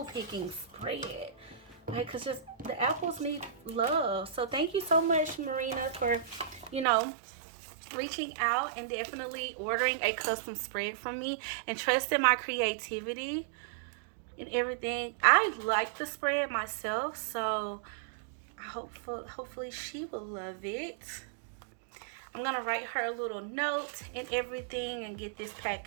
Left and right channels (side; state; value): left; drops out; at 6.9 s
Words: picking spread. Like, cause just the apples need love. So thank you so much, Marina, for, you know, reaching out and definitely ordering a custom spread from me and trusting my creativity and everything. I like the spread myself, so hopefully she will love it. I'm gonna write her a little note and everything and get this